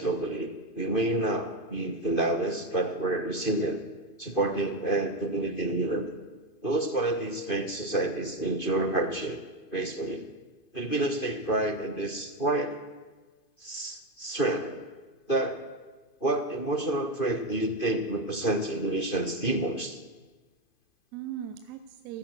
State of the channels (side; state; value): right; late; 2.5 ms